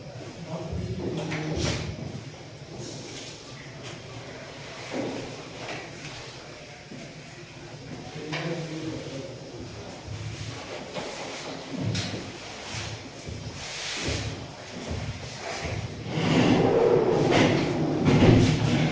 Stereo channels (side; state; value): both; identical; correlation 1.00